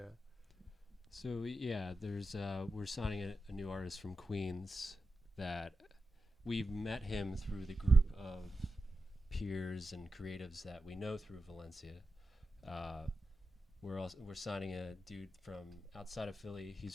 So yeah, there's we're signing a new artist from Queens that we've met him through the group of peers and creatives that we know through Valencia. We're signing a dude from outside of Philly. He's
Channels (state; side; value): normal; both; correlation 0.91